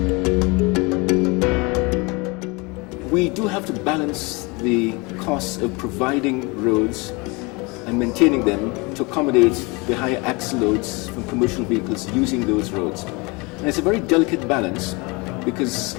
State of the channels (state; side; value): quieter; right; 27.2 dB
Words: do have to balance the costs of providing roads and maintaining them to accommodate the higher axle loads from commercial vehicles using those roads. And it's a very delicate balance because